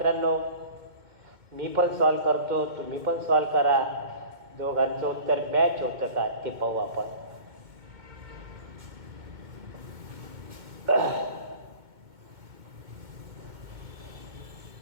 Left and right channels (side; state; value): left; late; 2.2 ms